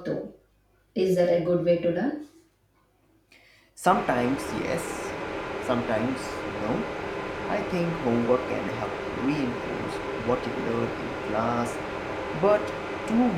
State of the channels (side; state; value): both; identical; correlation 1.00